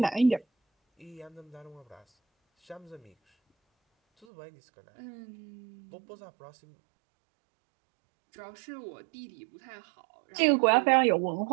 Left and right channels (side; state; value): left; drops out; at 4.2 s